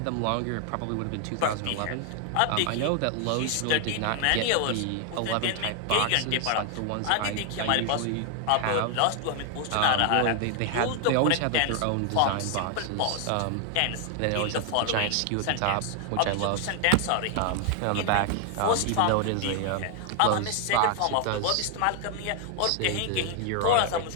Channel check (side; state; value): both; different; correlation 0.00